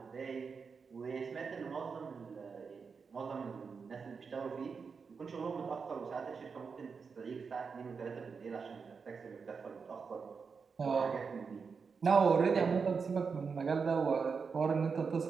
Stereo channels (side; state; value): left; quieter; 5.4 dB